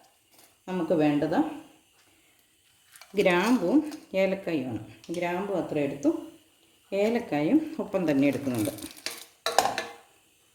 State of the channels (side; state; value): both; identical; correlation 1.00